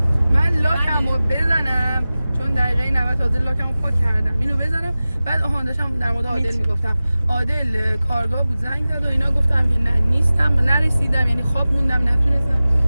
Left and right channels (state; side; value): inverted; both; correlation -0.96